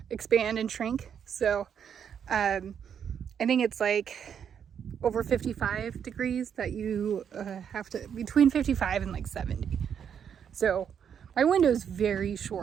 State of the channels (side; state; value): left; quieter; 8.0 dB